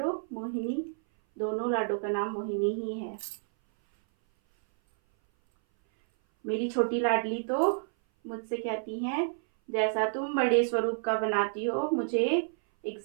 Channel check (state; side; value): silent; left; 57 dB below the other